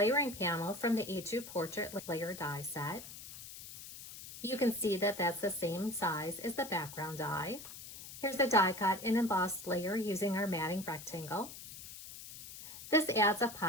panel from the A2 portrait layer die set, You can see that that's the same size as the background die. Here's a die cut and embossed layer using our matting rectangle. This adds a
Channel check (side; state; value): left; noise; hiss, 13 dB below the sound